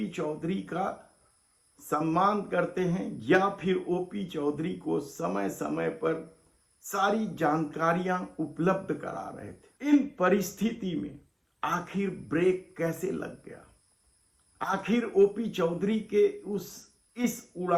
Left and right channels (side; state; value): both; identical; correlation 1.00